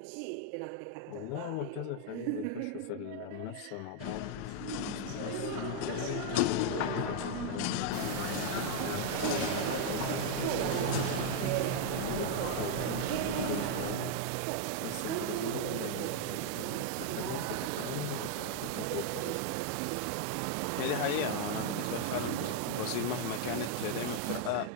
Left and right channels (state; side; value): different; both; correlation 0.00